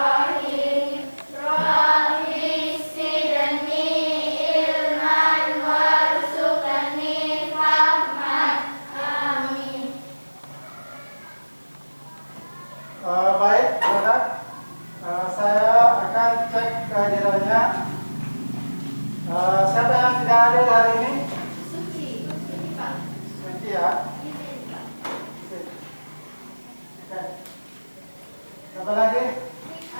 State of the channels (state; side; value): inverted; both; correlation -1.00